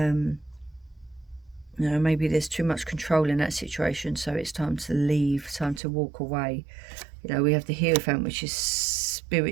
Maybe there's too much control in that situation, so it's time to leave, time to walk away. We have the Hierophant, which is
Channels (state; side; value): drops out; left; at 5.8 s